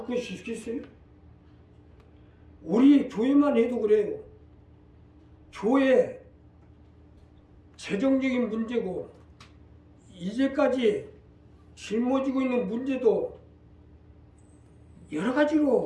것이 있겠어요? 우리 교회만 해도 그래요. 교회 재정적인 문제고 이제까지 짊어지고 있는 문제도 여러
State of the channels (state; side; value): identical; both; correlation 1.00